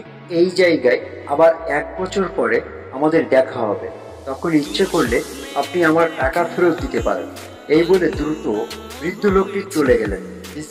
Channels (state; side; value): identical; both; correlation 1.00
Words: এই জায়গায় আবার 1 বছর পরে আমাদের দেখা হবে, তখন ইচ্ছে করলে আপনি আমার টাকা ফেরত দিতে পারেন। এই বলে দ্রুত বৃদ্ধ লোকটি চলে গেলেন।